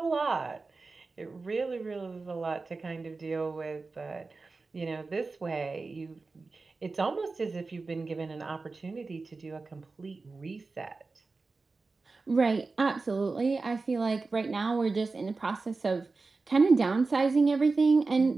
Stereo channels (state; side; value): quieter; left; 3.9 dB